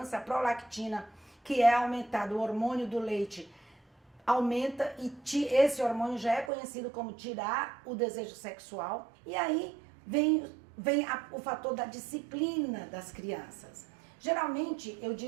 A prolactina, que é aumentado, o hormônio do leite, aumenta e esse hormônio já é conhecido como tirar o desejo sexual. E aí vem o fator da disciplina das crianças. Geralmente eu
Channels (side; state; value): left; drops out; at 6.5 s